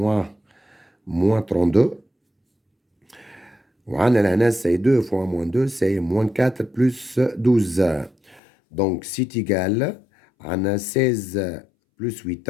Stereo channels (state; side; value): drops out; right; at 8.4 s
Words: 32. وعندنا c'est 2 fois moins 2, c'est moins 4 plus 12. Donc, c'est égal à 16 plus 8